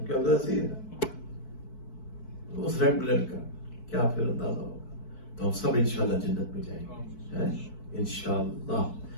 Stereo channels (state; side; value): late; right; 4.6 ms